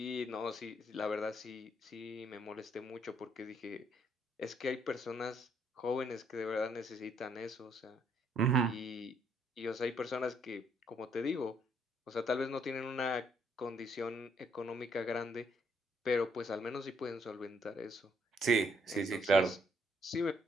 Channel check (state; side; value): normal; both; correlation 0.70